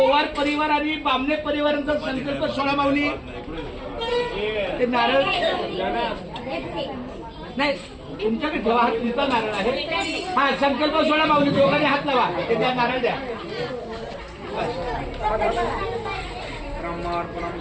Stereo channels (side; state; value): both; identical; correlation 1.00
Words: परिवार आणि बामणे परिवारांचा संकल्प सोळा माऊली. ते नारळ नाही तुमच्याकडे ठेवा, हा तुमचा नारळ आहे. हा संकल्प सोळा माऊली, दोघांनी हात लावा, ते द्या, नारळ द्या. ब्रह्मार्पणं